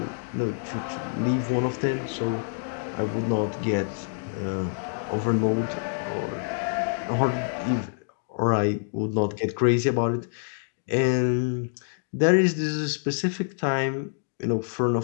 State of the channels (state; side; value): silent; right; digital silence